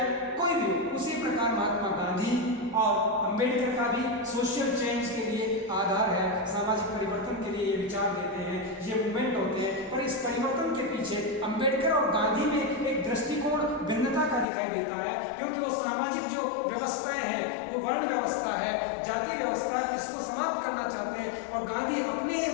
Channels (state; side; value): drops out; right; at 14.5 s